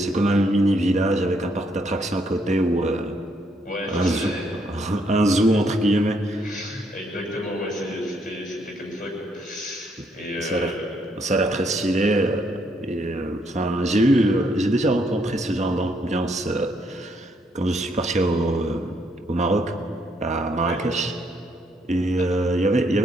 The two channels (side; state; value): both; normal; correlation 0.72